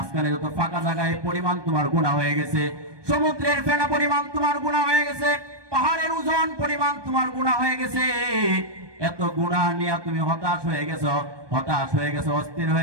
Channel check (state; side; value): late; left; 1.2 ms